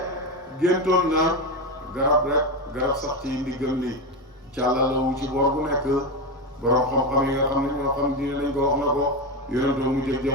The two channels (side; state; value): both; normal; correlation 0.14